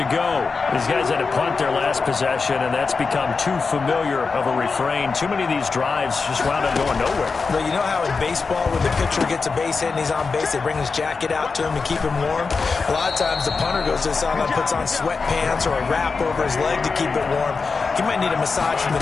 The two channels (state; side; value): quieter; right; 4.6 dB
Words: go. These guys had to punt their last possession, and that's become too familiar of a refrain. Too many of these drives just wound up going nowhere. Well, you know how in baseball, when the pitcher gets a base hit and he's on base, they bring his jacket out to him to keep him warm? A lot of times the punter goes to the sideline, puts on sweatpants or a wrap over his leg to keep it warm. He might need a massage from